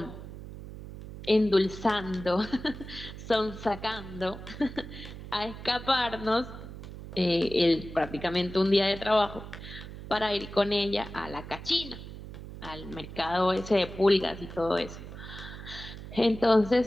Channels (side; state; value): right; noise; hum, 12 dB below the sound